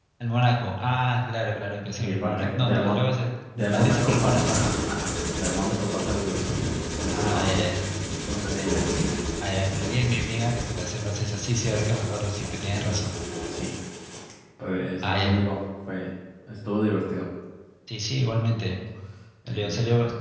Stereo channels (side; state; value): both; identical; correlation 1.00